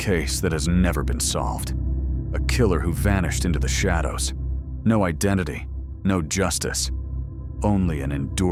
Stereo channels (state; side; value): identical; both; correlation 1.00